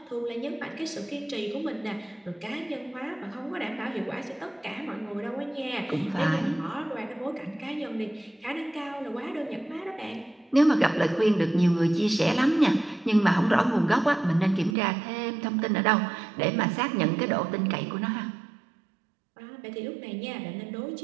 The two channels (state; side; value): drops out; left; at 14.8 s